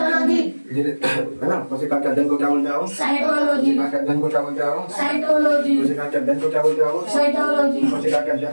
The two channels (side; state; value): both; inverted; correlation -1.00